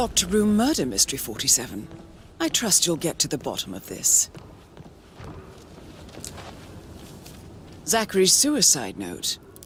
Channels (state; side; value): identical; both; correlation 1.00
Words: room murder mystery, 47. I trust you'll get to the bottom of this. Zachary's suicide note.